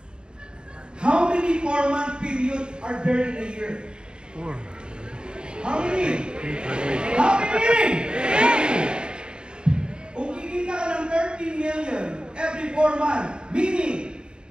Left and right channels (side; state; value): left; late; 0.050 ms